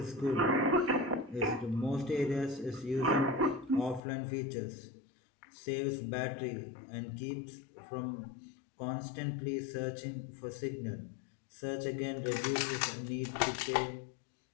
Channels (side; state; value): right; drops out; at 4.0 s